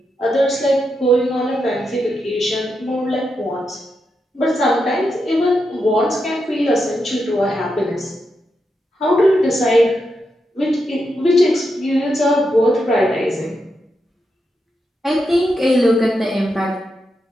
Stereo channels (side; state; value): both; normal; correlation 0.85